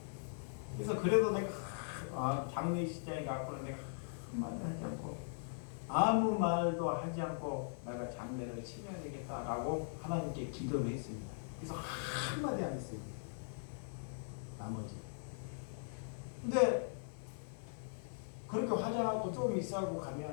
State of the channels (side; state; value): right; silent; 51 dB below the other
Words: 그래서 그래도 내가 장례식장에 가고는 내가 한마디 하지 않고 아무 말도 하지 않고 내가 장례를 치러야 되겠다라고 하나님께 기도를 했습니다. 그래서 한마디 안 했어요. 나머지. 근데 그렇게 화장하고 좀 있어하고